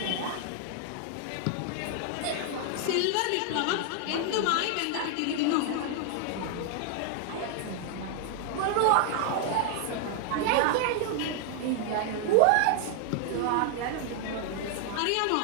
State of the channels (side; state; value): both; different; correlation 0.00